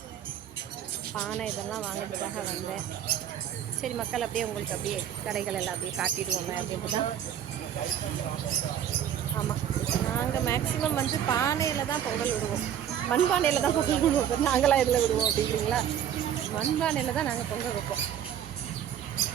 பானை இதெல்லாம் வாங்கிறதுக்காக வந்தேன். சரி மக்கள், அப்படியே உங்களுக்கு அப்படியே கடைகள் எல்லாம் அப்படியே காட்டிடுவோங்க அப்படின்ட்டு தான். ஆமாம், நாங்கள் மேக்ஸிமம் வந்து பானையில் தான் பொங்கல் விடுவோம். மண்பானையில் தான் பொங்கல் விடுவோம். நாங்களாம் இதில் விடுவோம் அப்படிங்களா? மண்பானையில் தான் நாங்கள் பொங்கல் வைப்போம்.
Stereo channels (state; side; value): quieter; left; 9.9 dB